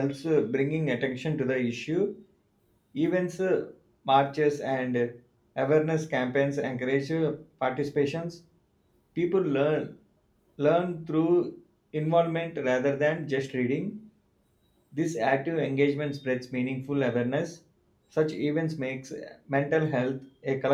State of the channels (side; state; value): both; identical; correlation 1.00